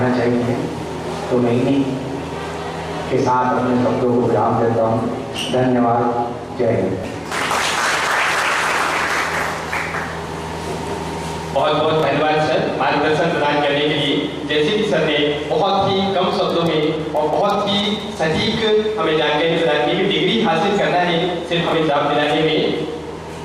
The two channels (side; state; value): both; identical; correlation 1.00